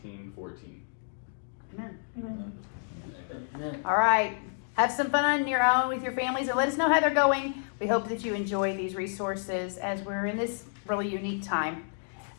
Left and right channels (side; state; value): right; silent; digital silence